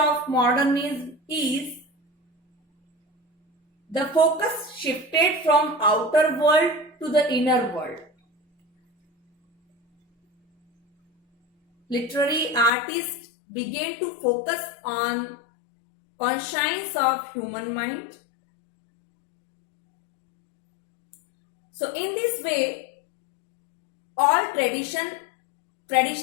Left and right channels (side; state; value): right; drops out; at 12.7 s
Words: modernism is the focus shifted from outer world to the inner world. Literary artists began to focus on conscience of human mind. So in this way, all